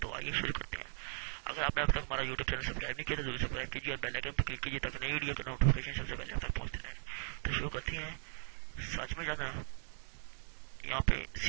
तो आइए शुरू करते हैं। अगर आपने अब तक हमारा यूट्यूब चैनल सब्सक्राइब नहीं किया तो जरूर सब्सक्राइब कीजिए और बेल आइकन पर क्लिक कीजिए ताकि नई वीडियो का नोटिफिकेशन सबसे पहले आप तक पहुंचते रहे। तो शुरू करते हैं। सच में जाना है, यहाँ पे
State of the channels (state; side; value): silent; left; 52 dB below the other